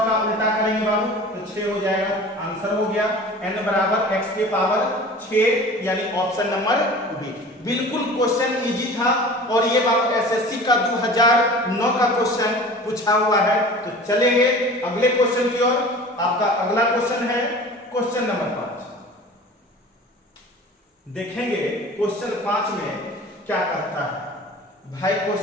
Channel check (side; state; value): both; normal; correlation 0.41